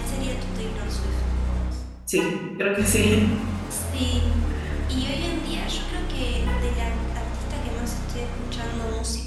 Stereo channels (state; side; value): identical; both; correlation 1.00